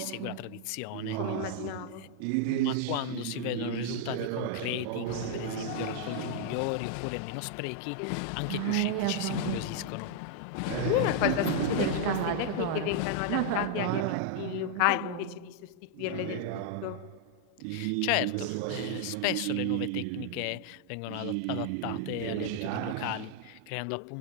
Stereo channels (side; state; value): both; different; correlation -0.01